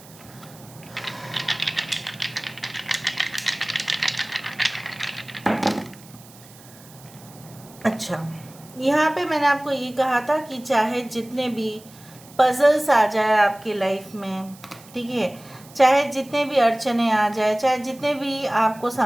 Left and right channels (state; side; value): noise; right; hiss, 22 dB below the sound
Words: अच्छा, यहाँ पे मैंने आपको ये कहा था कि चाहे जितने भी पजल्स आ जाए आपकी लाइफ में, ठीक है, चाहे जितने भी अड़चने आ जाए, चाहे जितने भी आपको